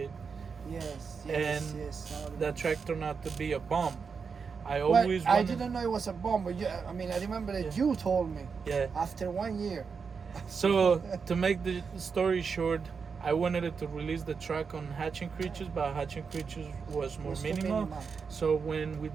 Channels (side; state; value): left; quieter; 5.6 dB